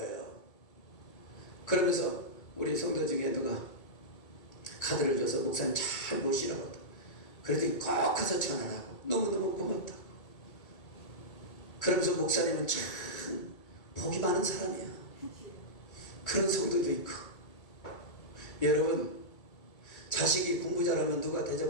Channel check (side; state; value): right; late; 2.2 ms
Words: 그러면서 우리 성도 중에 누가 카드를 줘서 목사님 잘 모시라고. 그랬더니 꼭 가서 전화하고 너무너무 고맙다. 그러면서 목사님은 참 복이 많은 사람이야. 그런 성도도 있고. 여러분 자식이 공부 잘하면 누가